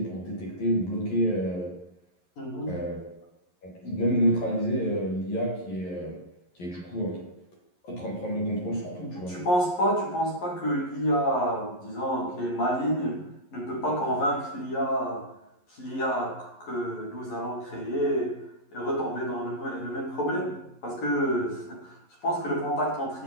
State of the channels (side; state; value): right; late; 11 ms